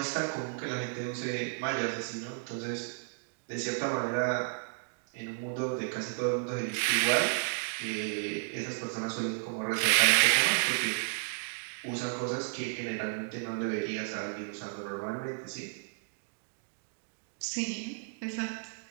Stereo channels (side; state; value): left; silent; digital silence